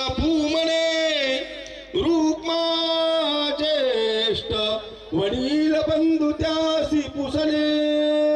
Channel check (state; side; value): identical; both; correlation 1.00